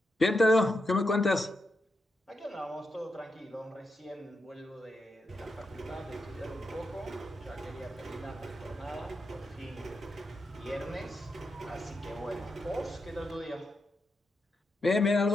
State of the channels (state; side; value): normal; both; correlation 0.85